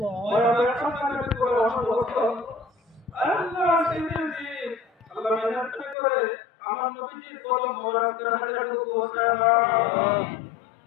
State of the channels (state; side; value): drops out; right; at 6.0 s